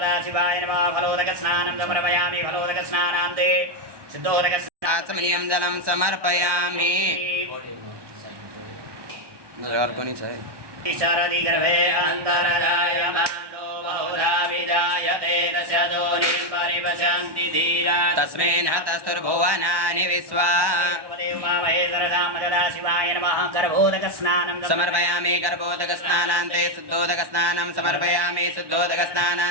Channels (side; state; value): left; late; 1.1 ms